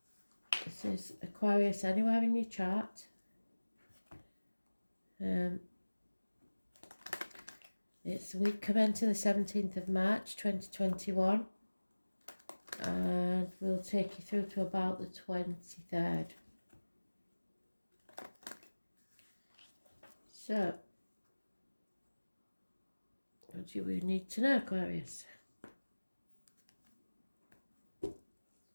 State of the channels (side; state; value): both; inverted; correlation -1.00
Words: This is Aquarius anywhere in your chart. It's week commencing the 17th of March 2021, and we'll take you through to about the 23rd. So, what do we need to know, Aquarius?